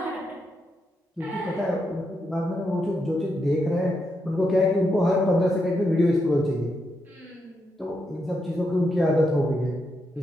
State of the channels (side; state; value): both; normal; correlation 0.82